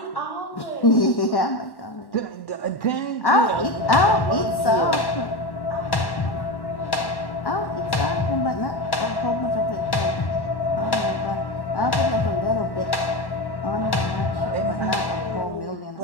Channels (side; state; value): right; late; 1.1 ms